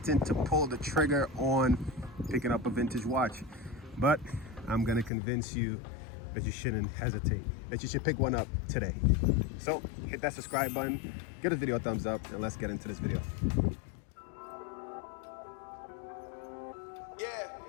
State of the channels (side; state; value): right; drops out; at 5.1 s